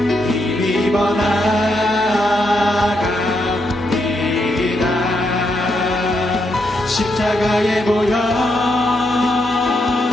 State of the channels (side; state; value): both; normal; correlation 0.80